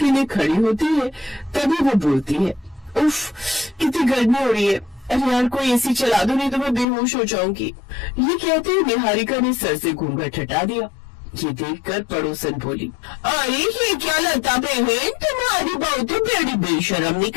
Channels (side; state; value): right; drops out; at 6.9 s